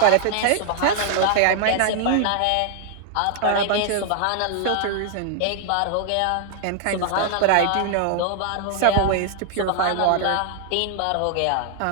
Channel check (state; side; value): different; both; correlation 0.00